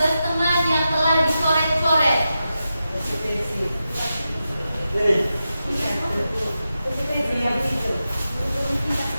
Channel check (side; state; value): both; inverted; correlation -0.90